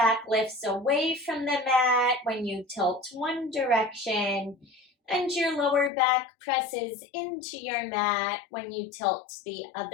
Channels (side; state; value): right; drops out; at 5.9 s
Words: lifts away from the mat when you tilt one direction, and your lower back presses into your mat when you tilt the